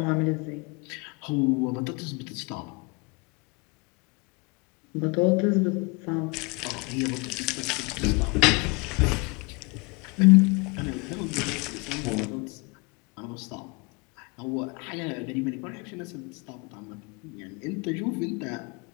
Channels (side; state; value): right; quieter; 29.3 dB